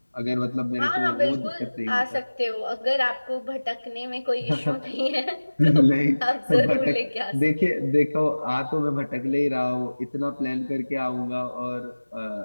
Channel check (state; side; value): inverted; both; correlation -1.00